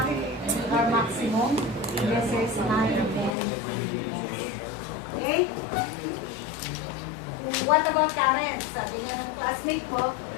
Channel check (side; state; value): right; drops out; at 3.4 s